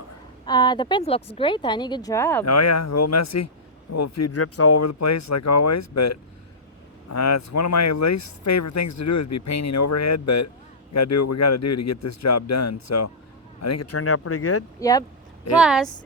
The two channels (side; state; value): both; normal; correlation -0.13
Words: The paint looks great, honey. Good job. Oh yeah, a little messy. A little few drips all over the place like always, but it's one of my least favorite things to do is be painting overhead, but we gotta do what we gotta do to get this job done. So I think it turned out pretty good. Yep. Plus,